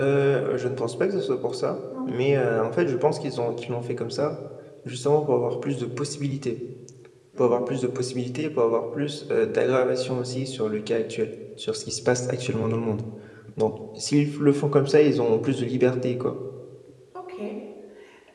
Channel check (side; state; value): both; identical; correlation 1.00